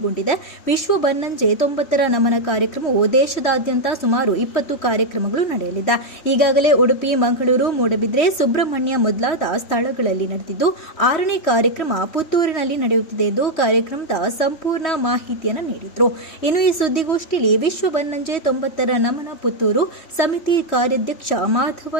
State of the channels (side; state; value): right; late; 3.1 ms